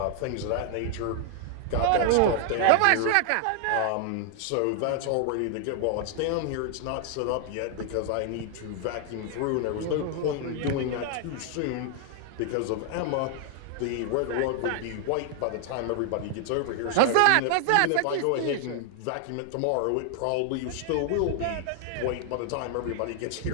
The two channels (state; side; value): different; both; correlation 0.00